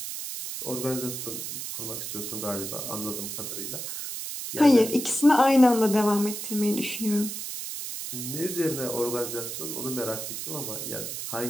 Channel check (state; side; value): noise; right; hiss, 6 dB below the sound